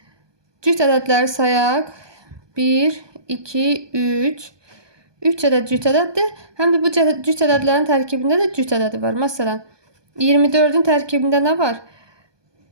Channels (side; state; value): left; late; 1.2 ms